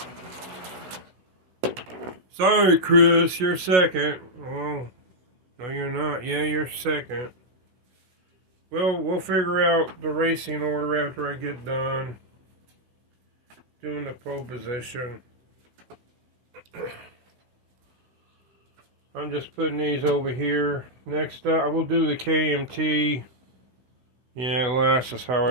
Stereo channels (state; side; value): late; left; 16 ms